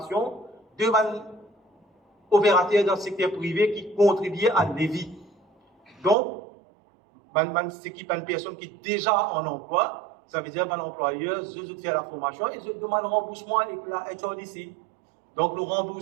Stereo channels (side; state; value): left; drops out; at 6.2 s